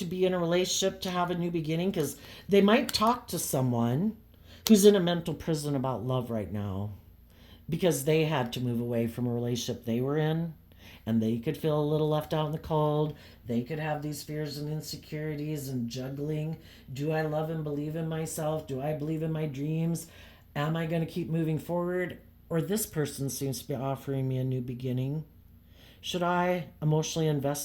be in a relationship to have a new beginning, because they might talk to someone who's in a mental prison about love right now because they had to move away from a relationship they were in, and they could feel a little left out in the cold. They could have these fears and insecurities and juggling. Do I love and believe in myself? Do I believe in my dreams? Am I going to keep moving forward? Or this person seems to be offering me a new beginning. Should I emotionally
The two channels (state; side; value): identical; both; correlation 1.00